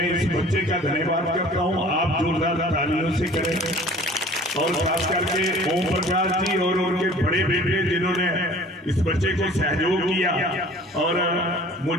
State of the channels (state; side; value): normal; both; correlation 0.48